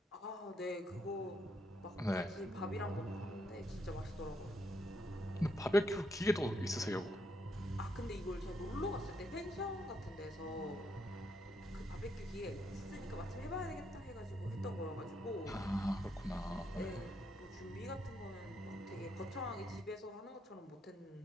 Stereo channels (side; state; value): both; normal; correlation 0.77